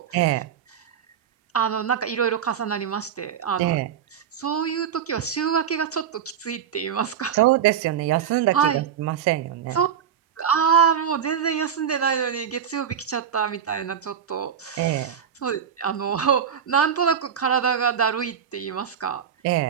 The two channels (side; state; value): left; quieter; 8.3 dB